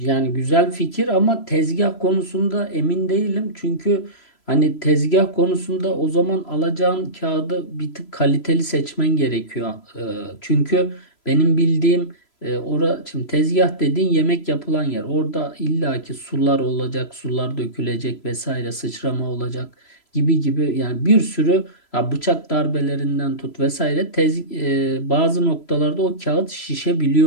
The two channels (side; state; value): right; late; 3.0 ms